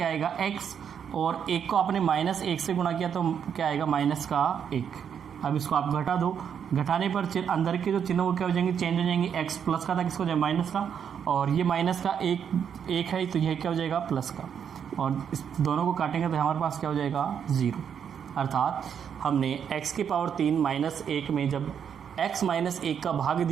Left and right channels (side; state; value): left; quieter; 7.9 dB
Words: आएगा? x, और 1 को आपने माइनस 1 से गुणा किया तो क्या आएगा? माइनस का 1। अब इसको आप घटा दो, घटाने पर अंदर के जो चिन्ह वो क्या हो जाएंगे? चेंज हो जाएंगे। x प्लस का था, किसको हो जाएगा? माइनस का, और ये माइनस का 1 है तो यह क्या हो जाएगा? प्लस का, और इस दोनों को काटेंगे तो हमारे पास क्या हो जाएगा? 0। अर्थात हमने x की पावर 3 माइनस 1 में जब x माइनस 1 का भाग